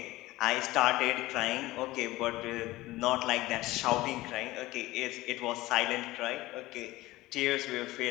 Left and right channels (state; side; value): quieter; right; 18.4 dB